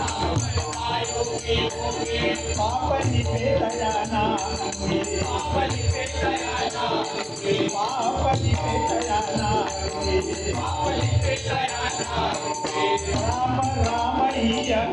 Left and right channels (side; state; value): both; identical; correlation 1.00